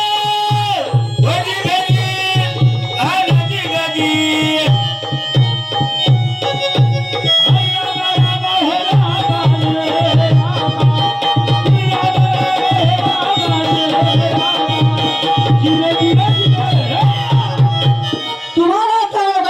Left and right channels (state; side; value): identical; both; correlation 1.00